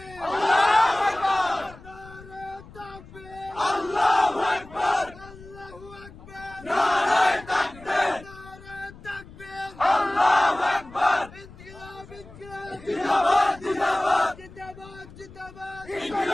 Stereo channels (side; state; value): left; noise; rumble, 19 dB below the sound